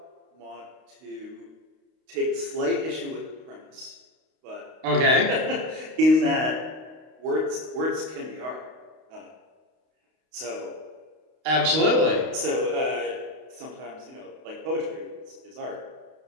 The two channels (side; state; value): left; late; 32 ms